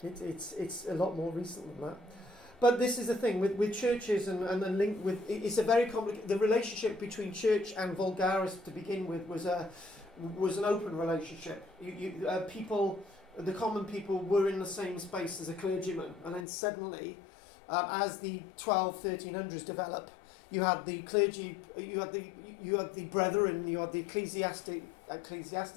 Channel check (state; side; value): drops out; right; at 16.4 s